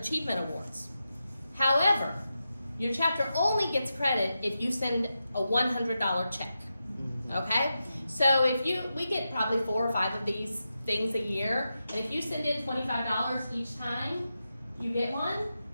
awards. However, your chapter only gets credit if you send a $100 check, okay? So we get probably 4 or 5 of these things a year, and if you send in $25 each time you get one,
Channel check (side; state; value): both; inverted; correlation -0.89